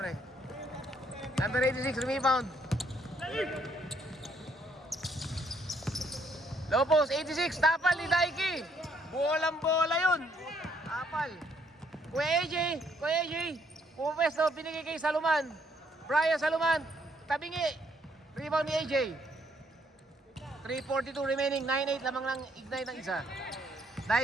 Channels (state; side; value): normal; both; correlation 0.69